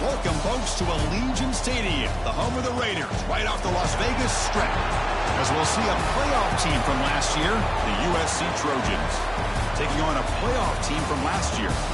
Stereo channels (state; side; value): identical; both; correlation 1.00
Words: Welcome, folks, to Allegiant Stadium, the home of the Raiders, right off the Las Vegas Strip, as we'll see a playoff team from last year, the USC Trojans, taking on a playoff team from last year,